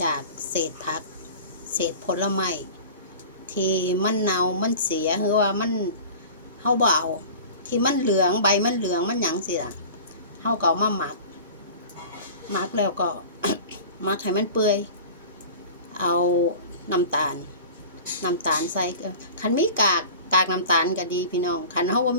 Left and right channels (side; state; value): both; inverted; correlation -0.39